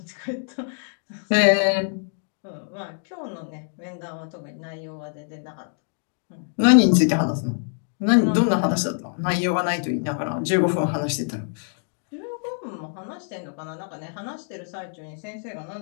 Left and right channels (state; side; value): silent; right; 62 dB below the other